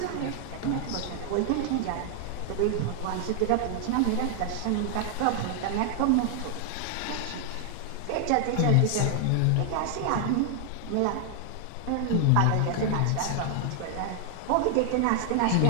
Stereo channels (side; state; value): both; different; correlation 0.00